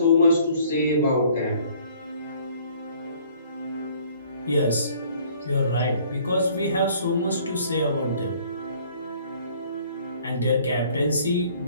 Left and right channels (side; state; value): both; inverted; correlation -0.58